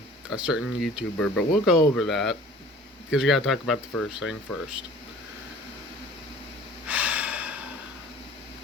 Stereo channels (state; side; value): normal; both; correlation 0.47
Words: certain YouTuber, but we'll go over that. Because we gotta talk about the first thing first.